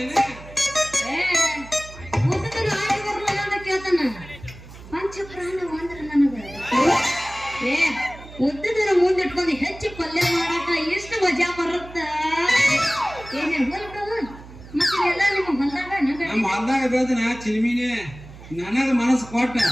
ಉದ್ದುತ್ತರು ಆಗಿ ಬರಲ್ಲ ಅಂತ ಕೇಳ್ತಾನ. ಪಂಚ ಪ್ರಾಣ ಅಂದ್ರ ನನಗ ಉದ್ದುದರ ಮುಂದೆ ಇಟ್ಕೊಂಡು ಹೆಚ್ಚು ಪಲ್ಯ ಮಾಡಾಕ ಎಷ್ಟು ಮಜಾ ಬರುತ್ತ. ಏನೇ ಹೊಲ್ಬಿಡವ ಮತ್ತೆ ಎಲ್ಲ ನಿಮ್ಮ ಹೊಲ್ದಾಗ ನಮ್ಮ ಹೊಲ್ದಾಗ ಬೆಳೆದನ ಚಿಲ್ಮಿನಿ ನನಗ ಮನಸ್ಸು ಕೊಟ್ಟ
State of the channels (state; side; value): noise; right; hum, 17 dB below the sound